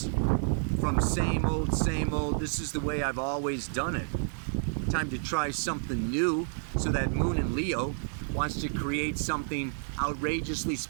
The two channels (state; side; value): silent; left; digital silence